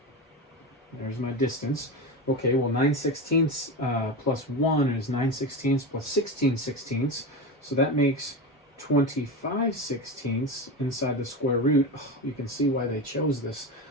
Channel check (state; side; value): normal; both; correlation 0.22